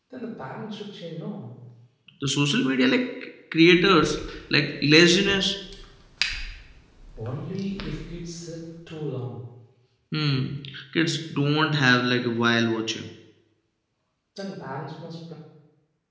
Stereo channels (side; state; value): both; identical; correlation 1.00